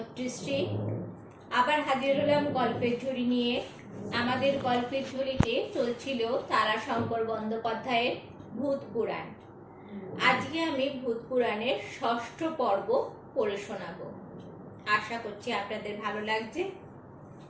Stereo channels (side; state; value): both; identical; correlation 1.00